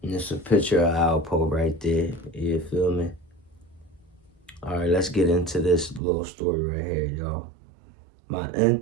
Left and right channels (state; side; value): drops out; left; at 6.0 s